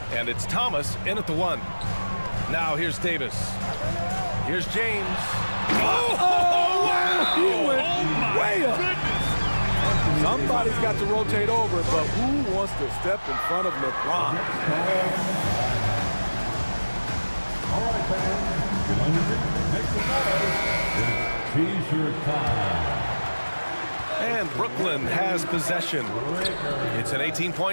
and it's Thomas in at the 1. Now here's Davis. Here's James. Oh, wow! He went way up. Goodness. Somebody's got to rotate over, but who wants to step in front of LeBron? All right, fans, make some noise. It's t-shirt time. And Brooklyn has possession. It's an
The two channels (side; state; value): both; inverted; correlation -1.00